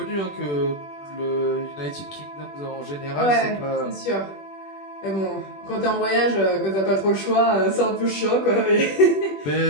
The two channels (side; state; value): right; late; 21 ms